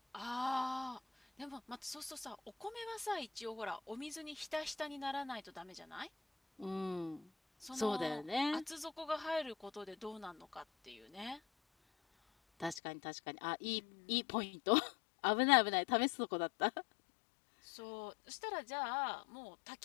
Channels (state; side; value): drops out; right; at 12.8 s